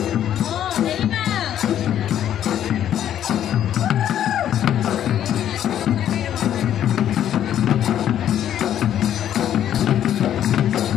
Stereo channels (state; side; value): quieter; right; 10.6 dB